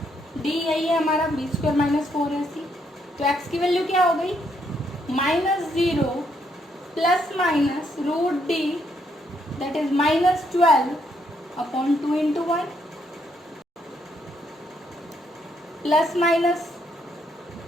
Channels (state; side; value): normal; both; correlation 0.74